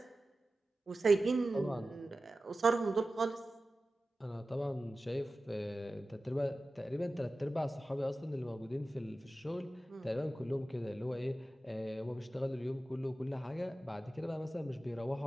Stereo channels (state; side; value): normal; both; correlation 0.95